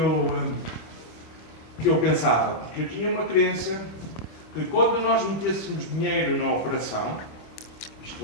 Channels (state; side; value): late; right; 25 ms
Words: pensava, porque eu tinha uma crença que quando nós metêssemos dinheiro na operação,